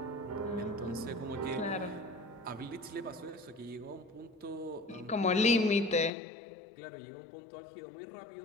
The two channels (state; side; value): drops out; right; at 6.1 s